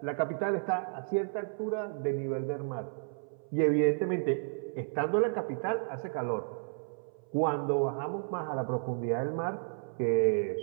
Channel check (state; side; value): silent; left; 56 dB below the other